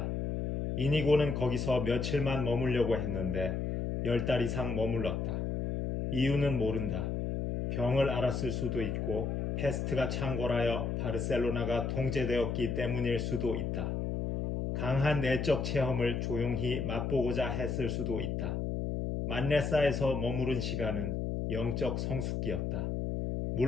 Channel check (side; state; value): left; noise; hum, 1 dB below the sound